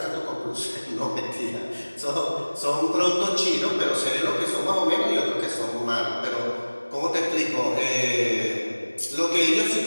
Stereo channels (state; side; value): inverted; both; correlation -1.00